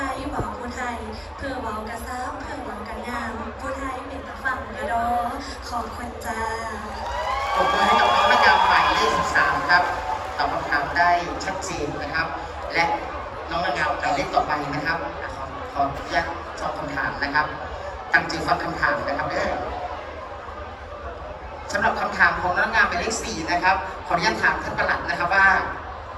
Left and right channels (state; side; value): identical; both; correlation 1.00